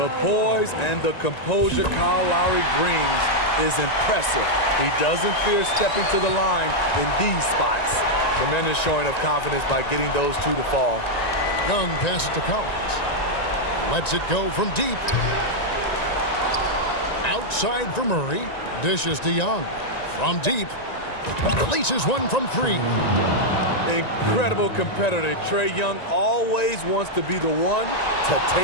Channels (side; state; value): right; late; 1.9 ms